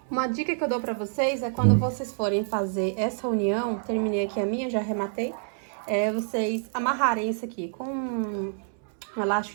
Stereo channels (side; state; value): left; silent; 60 dB below the other